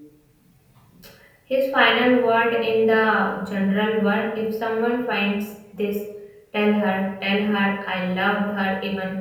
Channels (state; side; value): identical; both; correlation 1.00